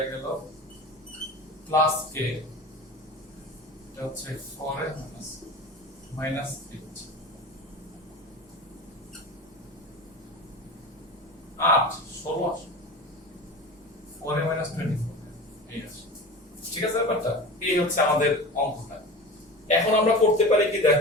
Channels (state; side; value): normal; both; correlation 0.32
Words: গেল, প্লাস k এটা হচ্ছে 4 মাইনাস 8 16 4 মাইনাস 24 এই আছে, ঠিক আছে ব্যাপারটা। এই হচ্ছে আমাদের অঙ্কটা। এখন আমরা করতে পারি কি